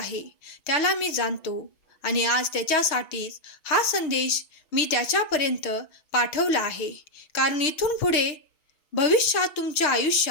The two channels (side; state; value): right; late; 6.3 ms